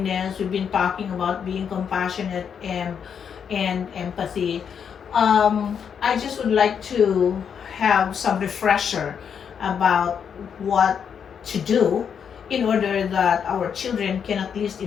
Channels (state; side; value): quieter; right; 7.4 dB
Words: we've been talking about being compassionate and empathy. I just would like to have some refresher about what to do in order that our children can at least